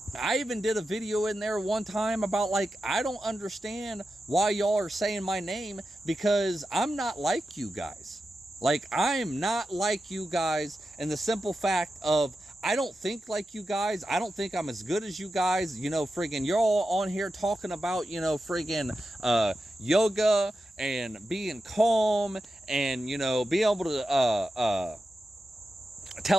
I even did a video in there one time about, like, I don't understand why y'all are saying my name, because I'm not like you guys. Like, I'm not like you guys, and the simple fact of, I don't think like you guys. I don't think I'm as good as you guys. Friggin', you're all on here talking about, friggin' yoga and being calm and, being able to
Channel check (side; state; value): both; normal; correlation 0.91